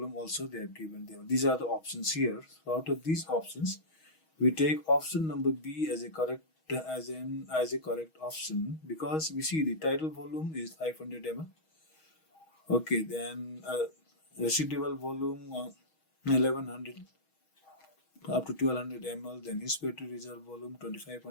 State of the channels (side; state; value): right; late; 6.3 ms